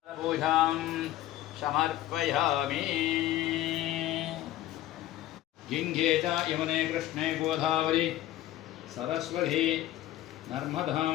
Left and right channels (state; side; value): quieter; right; 14.0 dB